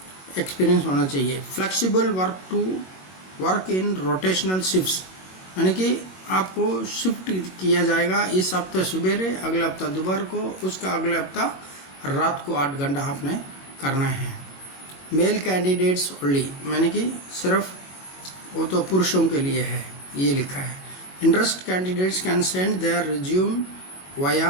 एक्सपीरियंस होना चाहिए। Flexible work in rotational shifts, यानी कि आपको शिफ्ट किया जाएगा, इस हफ्ते सवेरे, अगले हफ्ता दोपहर को, उसका अगले हफ्ता रात को 8 घंटा आपने करना है। मेल कैंडिडेट्स ओनली, मैंने कि सिर्फ वो तो पुरुषों के लिए है, ये लिखा है। Interest candidates can send their resume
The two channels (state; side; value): late; right; 21 ms